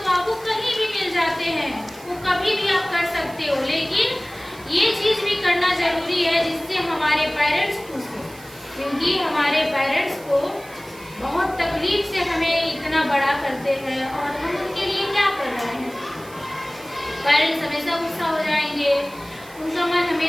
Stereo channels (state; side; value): noise; right; hiss, 21 dB below the sound